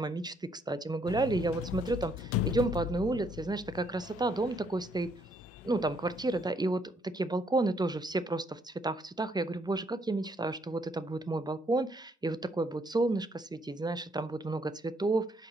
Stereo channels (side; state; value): both; normal; correlation 0.70